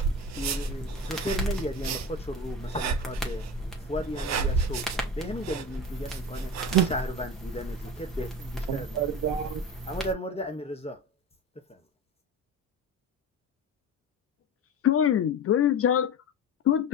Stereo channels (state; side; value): normal; both; correlation 0.27